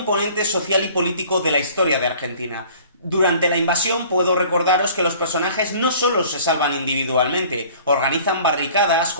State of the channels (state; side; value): inverted; both; correlation -0.49